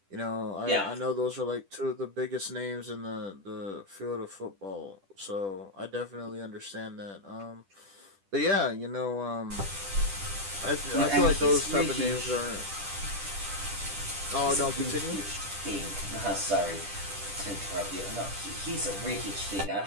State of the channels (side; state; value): left; late; 10 ms